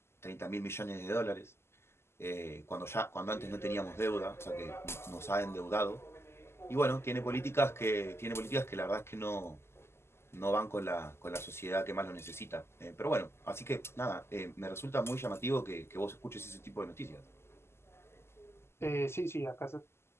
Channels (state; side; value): late; right; 0.12 ms